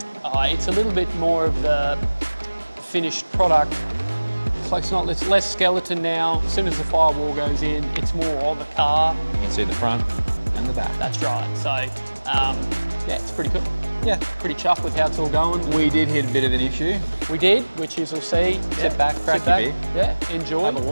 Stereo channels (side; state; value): both; inverted; correlation -1.00